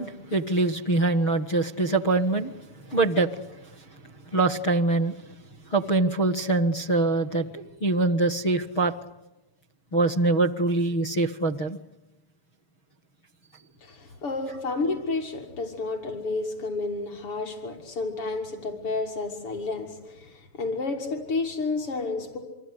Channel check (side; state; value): right; late; 6.3 ms